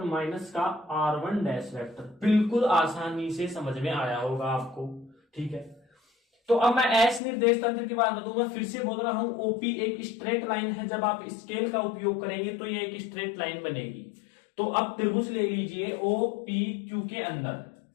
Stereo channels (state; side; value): drops out; right; at 7.2 s